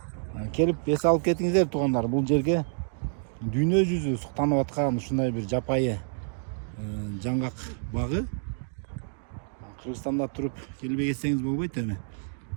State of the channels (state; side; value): silent; left; digital silence